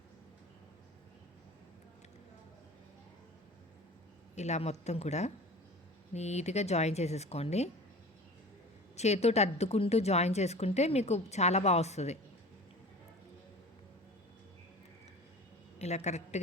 ఇలా మొత్తం కూడా నీట్గా జాయిన్ చేసేసుకోండి. చేతితో అద్దుకుంటూ జాయిన్ చేసుకుంటే మీకు చాలా బాగా వస్తుంది. ఇలా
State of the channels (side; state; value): both; normal; correlation 0.39